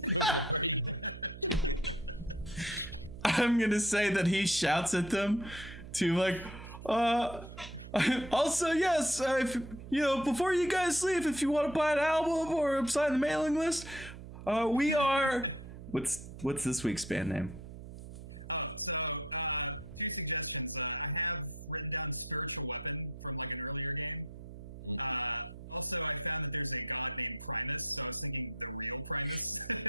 before he? I'm gonna say that he shouts at them to like, also yes, if before you guys leave, if you want to buy an album or sign the mailing list, we are. What's this week's band name? Oh, so 2 suggestions. I have written down Spiritual Weapon from like an earlier game. Also, I found that there's a god named Primus, so I was thinking the real Primus.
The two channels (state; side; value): noise; right; hum, 13 dB below the sound